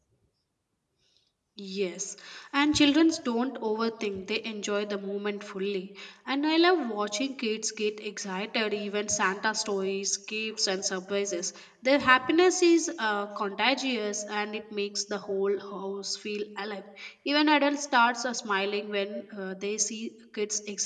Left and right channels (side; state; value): both; identical; correlation 1.00